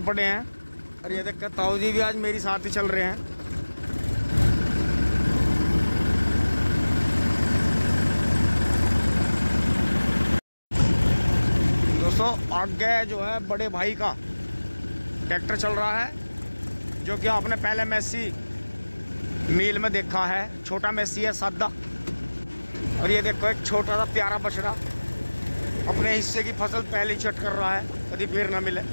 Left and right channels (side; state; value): both; inverted; correlation -1.00